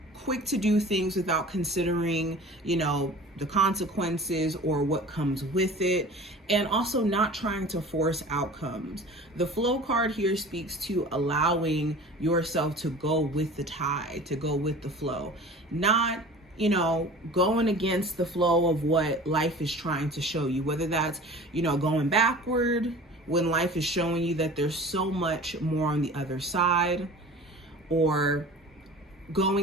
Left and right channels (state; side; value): normal; both; correlation 0.41